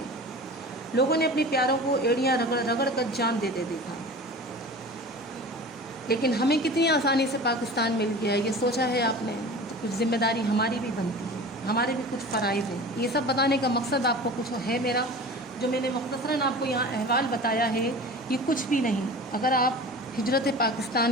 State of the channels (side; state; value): both; normal; correlation 0.37